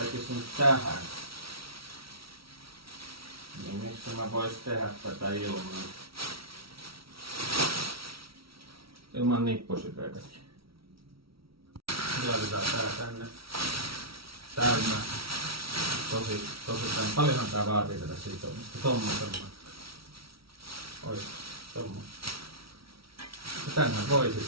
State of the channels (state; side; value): late; left; 0.75 ms